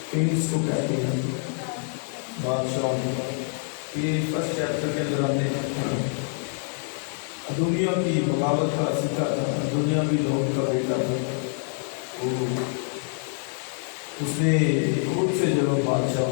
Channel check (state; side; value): silent; right; 61 dB below the other